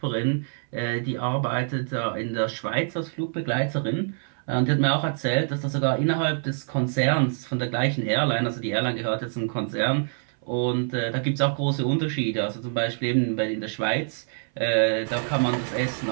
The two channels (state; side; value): silent; left; 61 dB below the other